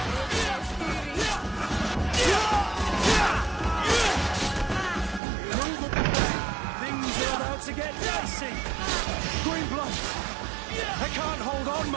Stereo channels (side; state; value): left; drops out; at 5.2 s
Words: To get dicey. Green blood. I can't hold on